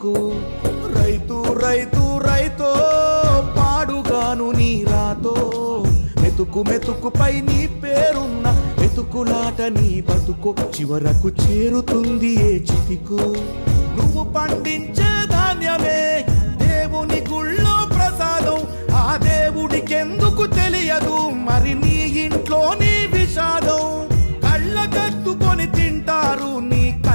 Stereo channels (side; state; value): both; inverted; correlation -1.00